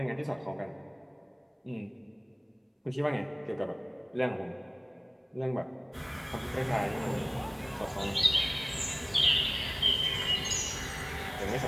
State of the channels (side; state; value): both; identical; correlation 1.00